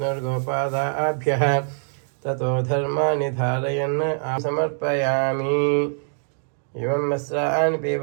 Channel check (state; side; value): silent; left; digital silence